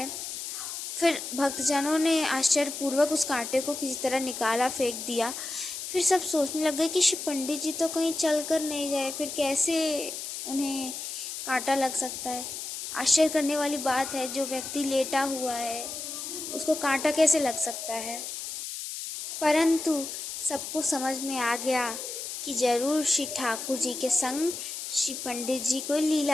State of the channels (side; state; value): left; noise; hiss, 7 dB below the sound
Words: फिर भक्तजनों ने आश्चर्यपूर्वक उस कांटे को किसी तरह निकाला, फेंक दिया। फिर सब सोचने लग गए कि श्री पंडित जी तो कहीं चल कर नहीं गए, फिर कैसे उन्हें कांटा लग सकता है। आश्चर्य करने वाली बात है, जो व्यक्ति लेटा हुआ है उसको कांटा कैसे लग सकता है। परंतु सबको समझ में आ गया कि जरूर श्री ठाकुर जी के संग श्री पंडित जी कोई